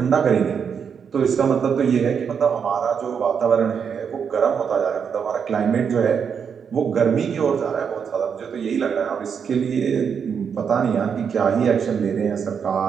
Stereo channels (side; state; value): left; quieter; 6.9 dB